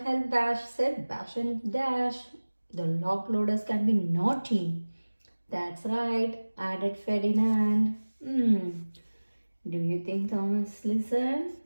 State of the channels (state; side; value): inverted; both; correlation -1.00